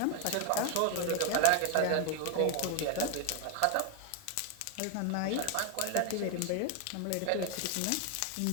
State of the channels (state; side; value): different; both; correlation 0.01